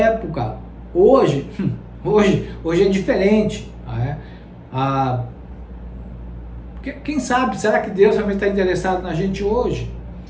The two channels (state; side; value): identical; both; correlation 1.00